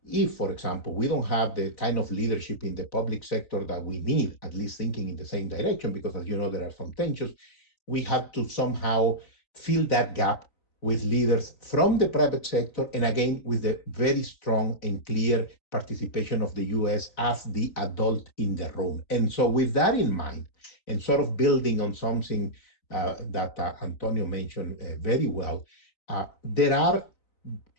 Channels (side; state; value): right; late; 3.9 ms